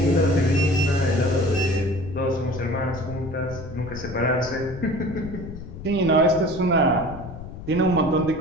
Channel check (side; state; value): left; noise; rumble, 12 dB below the sound